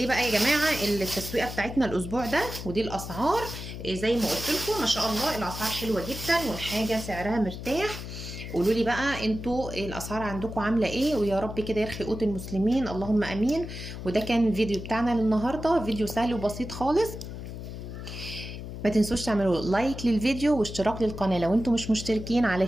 بقى يا جماعه التسويقه بتاعتنا الاسبوع ده، ودي الاسعار. زي ما قلت لكم ما شاء الله الاسعار حلوه جدا، والحاجه سعرها مرتاح. قولوا لي بقى انتوا الاسعار عندكم عامله ايه، ويا رب كده يرخي قوت المسلمين، اللهم امين. وده كان الفيديو بتاعنا للنهارده، فيديو سهل وبسيط خالص. ما تنسوش تعملوا لايك للفيديو واشتراك للقناه لو انتم مش مشتركين،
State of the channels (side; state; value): left; noise; hum, 9 dB below the sound